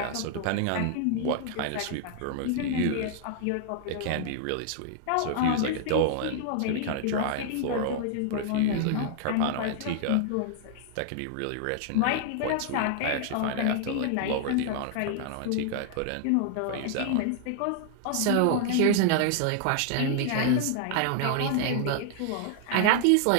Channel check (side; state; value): both; different; correlation -0.01